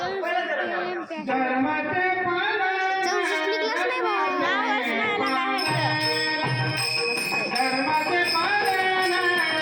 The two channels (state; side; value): identical; both; correlation 1.00